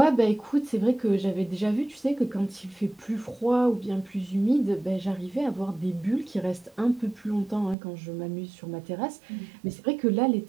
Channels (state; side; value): drops out; left; at 7.8 s